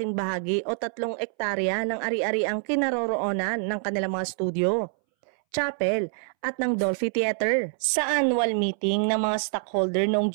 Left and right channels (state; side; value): silent; left; 61 dB below the other